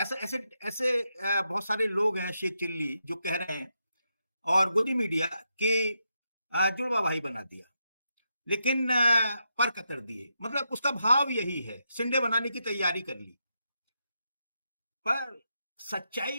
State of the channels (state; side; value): inverted; both; correlation -0.83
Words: ऐसे ऐसे बहुत सारे लोग हैं शेख चिल्ली जो कह रहे हैं और गोदी मीडिया के जुड़वा भाई बना दिया, लेकिन पर कतर दिए, मतलब उसका भाव यही है, सिंडे बनाने की तैयारी कर ली। पर